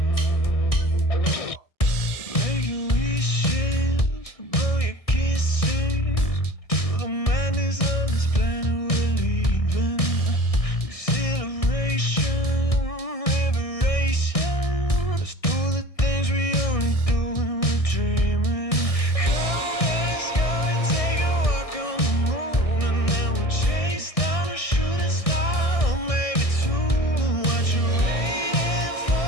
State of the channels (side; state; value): right; late; 1.6 ms